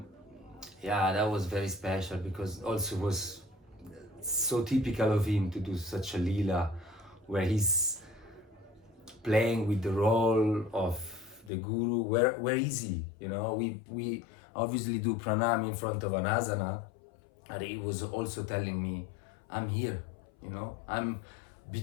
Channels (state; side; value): drops out; right; at 11.5 s